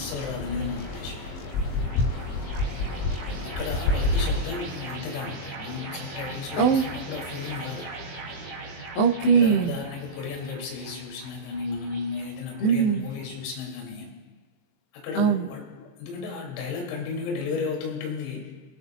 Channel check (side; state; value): right; late; 23 ms